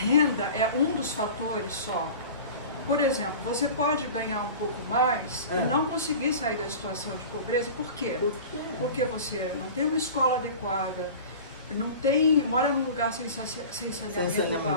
é um dos fatores só. Por exemplo, você pode ganhar um pouco mais e não conseguir sair da situação de pobreza. Por quê? Porque você não tem uma escola adequada, mora num lugar sem saneamento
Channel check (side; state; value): both; inverted; correlation -0.37